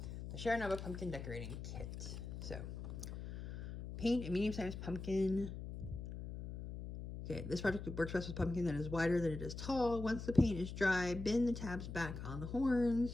The Chernobyl pumpkin decorating kit. So, paint a medium-sized pumpkin. Okay, this project works best with pumpkin that is wider than it is tall. Once the paint is dry, bend the tabs back on the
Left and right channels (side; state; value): left; noise; hum, 8 dB below the sound